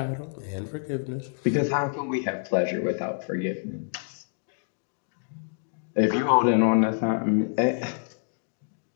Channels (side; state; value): right; silent; digital silence